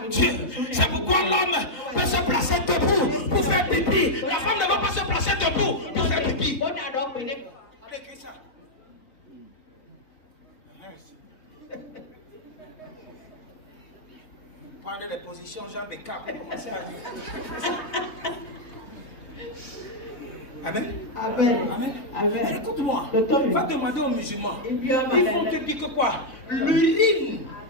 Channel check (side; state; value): right; late; 3.8 ms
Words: Dieu. C'est pourquoi l'homme peut se placer debout pour faire pipi. La femme ne va pas se placer debout pour faire pipi. Allez, écris ça. Prenez les positions, jambes et cap. Amen. Amen. Amen. Amen. Écoute-moi. Va demander aux musulmans. Ils vont te dire que quoi? L'urine.